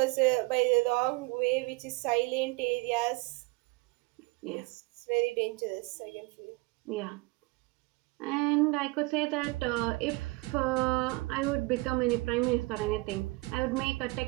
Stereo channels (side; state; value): left; quieter; 24.8 dB